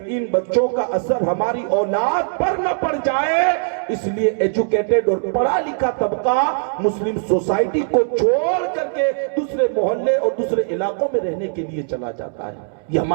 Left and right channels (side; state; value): left; silent; 66 dB below the other